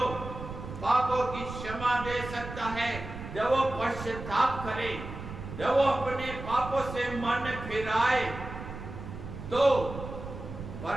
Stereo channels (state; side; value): noise; right; rumble, 10 dB below the sound